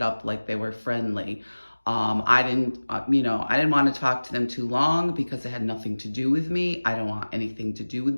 up like they were friendly. I didn't want to talk to them too long because it had nothing to do with me. I don't want anything to do with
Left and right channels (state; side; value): inverted; both; correlation -1.00